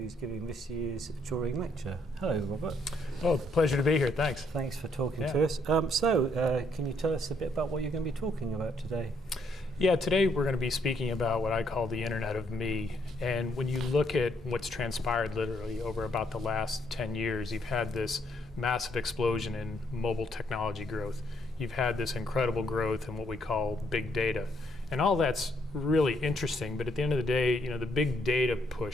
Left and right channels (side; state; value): both; normal; correlation 0.72